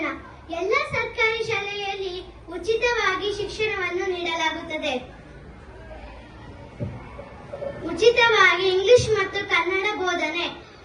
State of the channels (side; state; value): both; identical; correlation 1.00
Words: ಎಲ್ಲ ಸರ್ಕಾರಿ ಶಾಲೆಯಲ್ಲಿ ಉಚಿತವಾಗಿ ಶಿಕ್ಷಣವನ್ನು ನೀಡಲಾಗುತ್ತದೆ. ಉಚಿತವಾಗಿ ಇಂಗ್ಲಿಷ್ ಮತ್ತು ಕನ್ನಡ ಬೋಧನೆ.